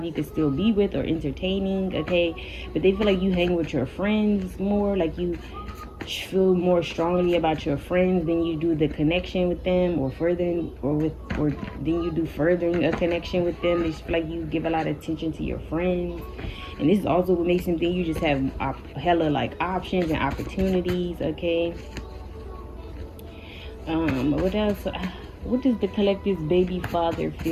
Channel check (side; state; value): both; identical; correlation 1.00